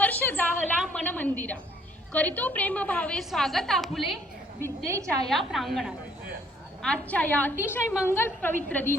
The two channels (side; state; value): both; normal; correlation 0.63